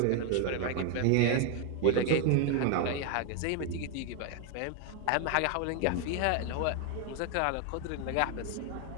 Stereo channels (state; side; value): different; both; correlation 0.01